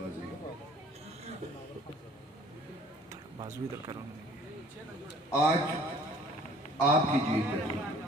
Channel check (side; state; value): both; normal; correlation 0.53